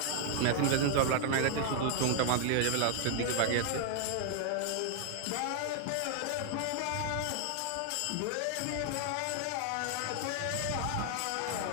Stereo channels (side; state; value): both; different; correlation 0.00